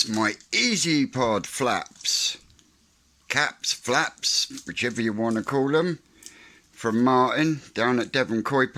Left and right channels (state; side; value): identical; both; correlation 1.00